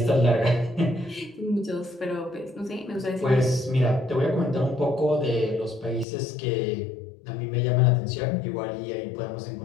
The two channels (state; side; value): drops out; right; at 6.1 s